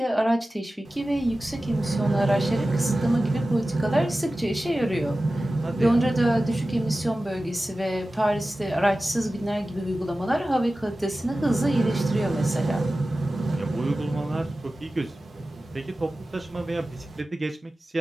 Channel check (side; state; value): both; normal; correlation 0.95